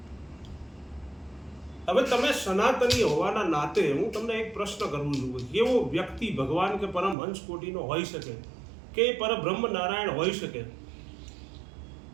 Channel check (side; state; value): left; drops out; at 7.2 s